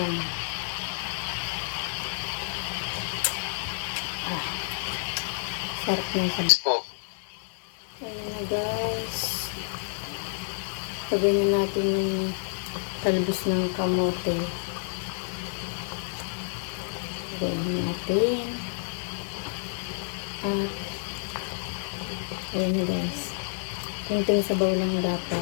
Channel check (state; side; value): silent; right; digital silence